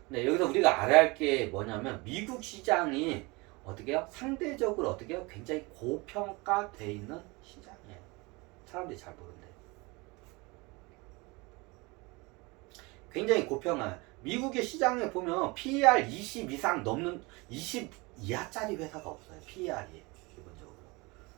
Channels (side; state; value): left; quieter; 25.7 dB